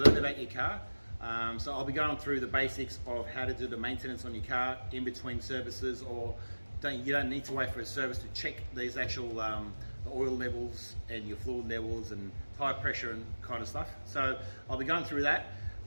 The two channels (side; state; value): both; inverted; correlation -1.00